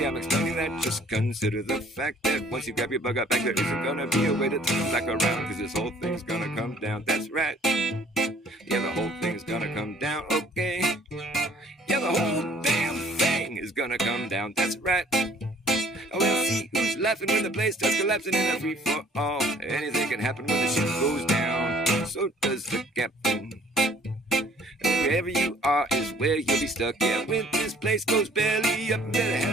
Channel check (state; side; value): normal; both; correlation 0.57